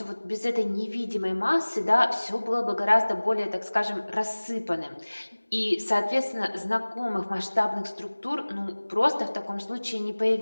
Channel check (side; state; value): both; inverted; correlation -1.00